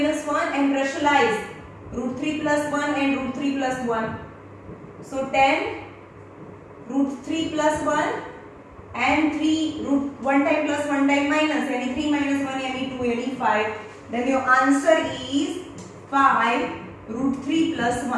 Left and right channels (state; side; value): identical; both; correlation 1.00